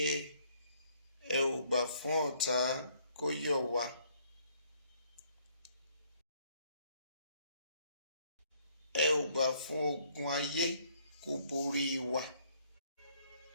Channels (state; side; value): inverted; both; correlation -0.65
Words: ẹ ò gbà fún ọ̀tá kó yọ̀ wá. Ẹ ò gbà fún ogun ayé kó borí wa.